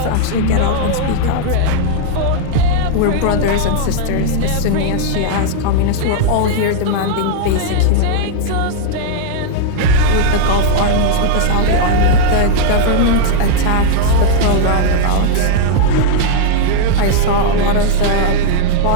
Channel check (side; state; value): both; different; correlation -0.01